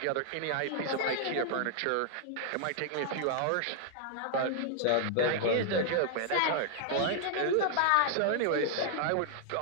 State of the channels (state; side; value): different; both; correlation -0.01